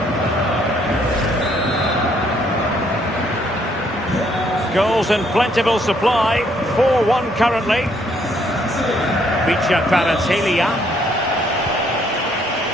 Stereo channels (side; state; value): both; normal; correlation 0.68